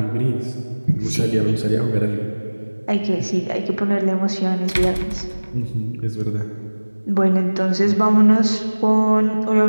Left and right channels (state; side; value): inverted; both; correlation -1.00